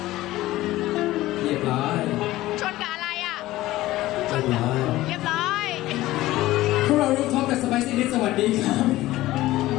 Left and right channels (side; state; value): right; quieter; 16.6 dB